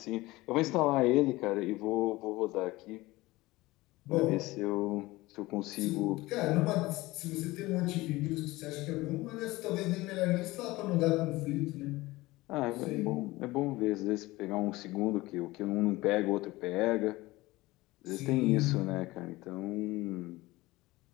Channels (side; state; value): right; quieter; 19.8 dB